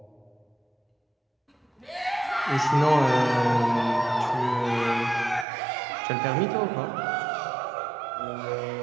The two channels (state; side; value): drops out; left; at 5.5 s